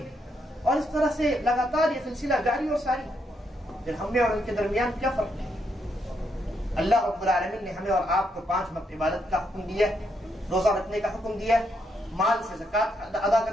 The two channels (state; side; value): normal; both; correlation 0.78